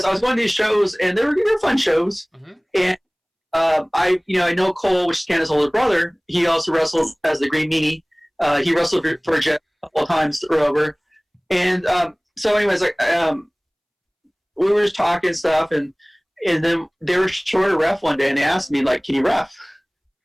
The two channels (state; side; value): identical; both; correlation 1.00